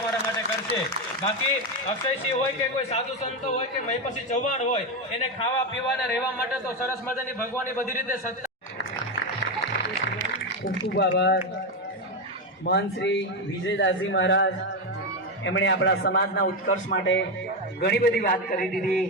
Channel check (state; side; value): normal; both; correlation 0.11